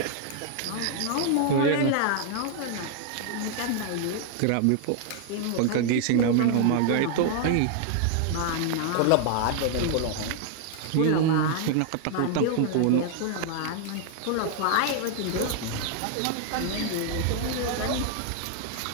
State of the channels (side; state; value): both; different; correlation 0.00